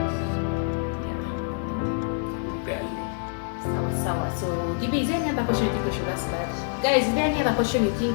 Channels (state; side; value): silent; right; digital silence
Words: Sawa. So, Gibi, is there any other question you think we should ask Dad? Guys, is there any other question you